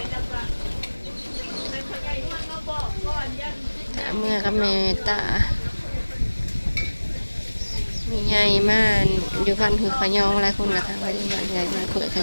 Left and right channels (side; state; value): both; inverted; correlation -1.00